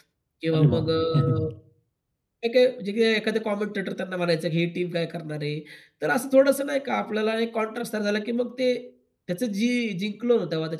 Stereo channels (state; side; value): identical; both; correlation 1.00